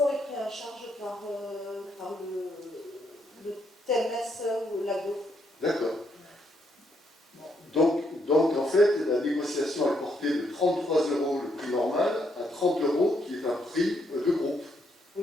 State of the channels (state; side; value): normal; both; correlation 0.75